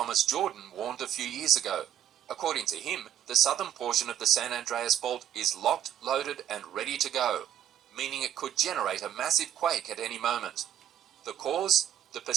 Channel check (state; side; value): quieter; left; 10.7 dB